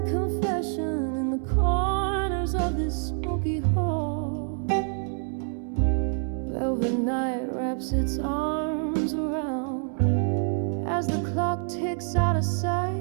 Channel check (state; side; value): silent; left; 60 dB below the other